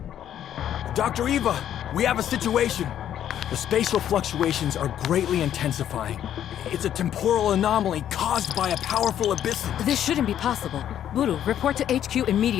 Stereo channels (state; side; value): quieter; right; 10.5 dB